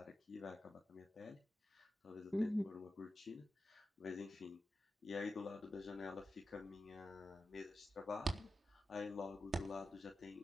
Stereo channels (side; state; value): both; normal; correlation 0.91